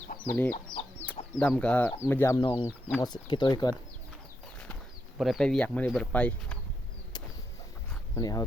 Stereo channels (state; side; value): normal; both; correlation 0.82